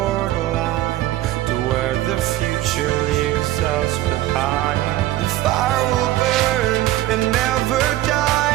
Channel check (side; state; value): left; quieter; 15.2 dB